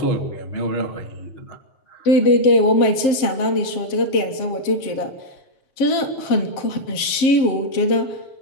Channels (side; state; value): right; late; 7.5 ms